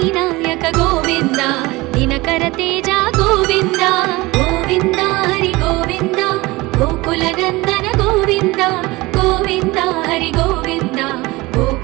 నాయక గోవింద దినకర తేజ గోవింద గోవింద హరి గోవింద గోకులనందన గోవింద గోవింద హరి గోవింద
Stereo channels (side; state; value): left; quieter; 21.5 dB